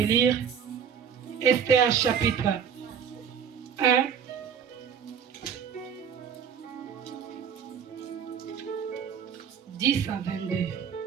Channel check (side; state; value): left; quieter; 7.5 dB